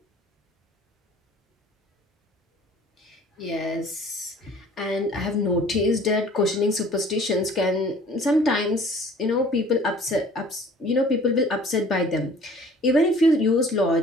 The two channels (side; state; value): both; normal; correlation 0.51